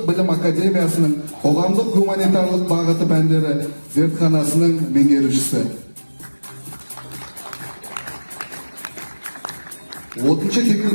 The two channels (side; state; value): both; inverted; correlation -1.00